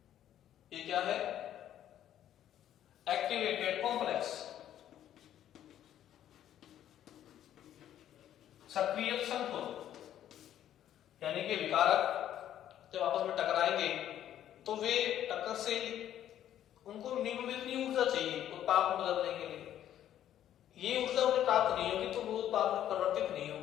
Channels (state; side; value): quieter; right; 11.2 dB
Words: ये क्या है, एक्टिवेटेड कॉम्प्लेक्स, सक्रिय संकुल, यानी कि विकारक जब आपस में टकराएंगे तो वे टक्कर से उनको मिनिमम इतनी ऊर्जा चाहिए उत्पाद में बदलने के लिए, ये ऊर्जा उन्हें प्राप्त नहीं होगी तो वो उत्पाद में परिवर्तित नहीं